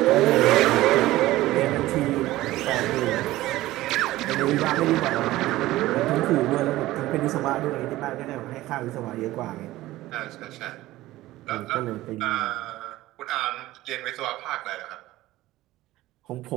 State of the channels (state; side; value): quieter; left; 16.7 dB